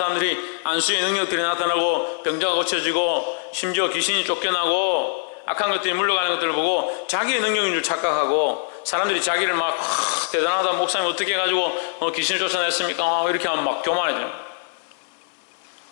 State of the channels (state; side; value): silent; right; 61 dB below the other